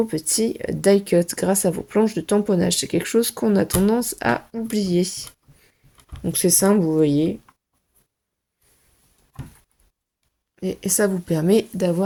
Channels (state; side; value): identical; both; correlation 1.00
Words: petits die cut grâce à vos planches de tamponnage. C'est quelque chose qu'on a tendance à oublier. Donc c'est simple, vous voyez. Et ça vous permet